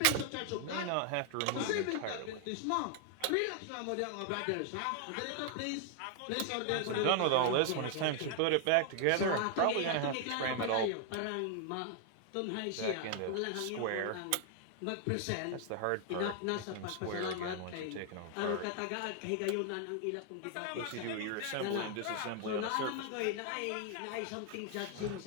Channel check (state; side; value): different; both; correlation 0.00